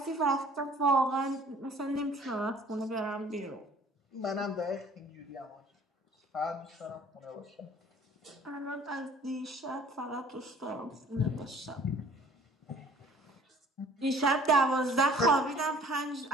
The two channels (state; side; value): normal; both; correlation 0.53